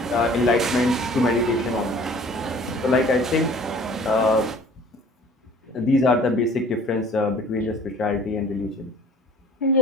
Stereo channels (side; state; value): both; normal; correlation 0.50